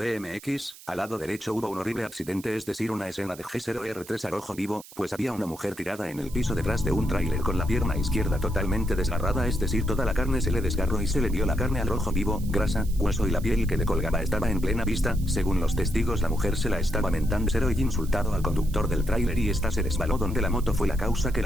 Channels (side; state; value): right; noise; hiss, 19 dB below the sound